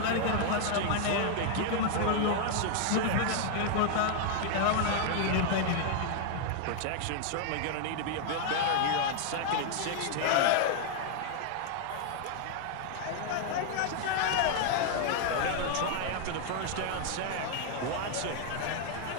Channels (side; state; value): both; different; correlation 0.00